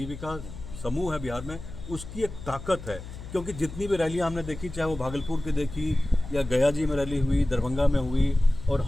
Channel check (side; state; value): left; noise; hum, 12 dB below the sound